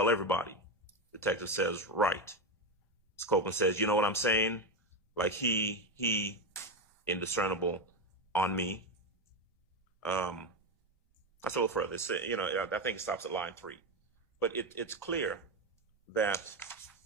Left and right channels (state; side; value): normal; both; correlation 0.12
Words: everybody. Detective says, right. Mr. Copeland says, you know what I'm saying? Like he indiscernible on me. That's a little further. It's, I think it stops at line 3. But it's clear that